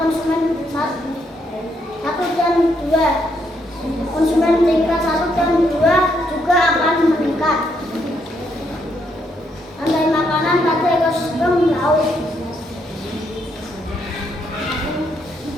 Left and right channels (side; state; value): both; normal; correlation 0.75